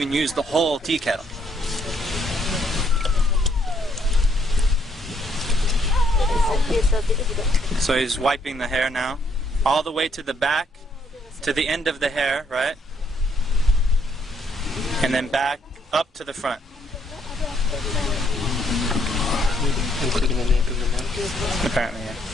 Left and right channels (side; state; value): both; normal; correlation 0.70